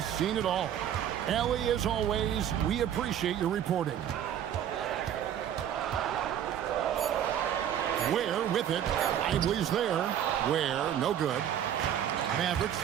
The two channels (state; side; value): quieter; left; 10.0 dB